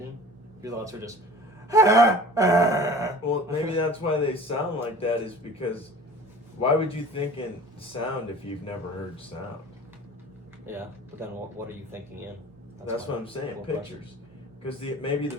Your thoughts are just. Well, maybe that's why they sound like that. Is because, why would you think in sound if you've never heard sound? Yeah, but then what are you thinking in? That's what I'm saying. Cool Pictures, because maybe the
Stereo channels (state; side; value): normal; both; correlation 0.43